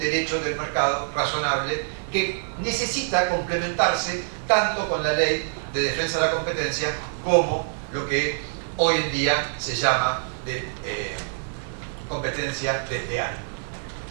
del mercado razonable que necesita complementarse tanto con la ley de defensa de la competencia como lo que hoy en día se llama de competencia desleal.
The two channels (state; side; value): silent; left; digital silence